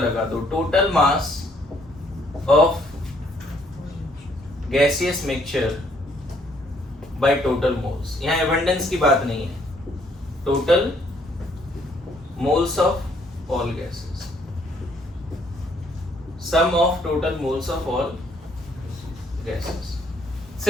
दो, total mass of gaseous mixture by total moles. यहां एबंडेंस की बात नहीं है, total moles of all gases, sum of total moles of all gases.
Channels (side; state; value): both; normal; correlation 0.66